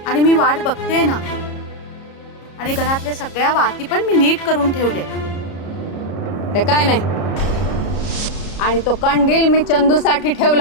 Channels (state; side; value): late; right; 33 ms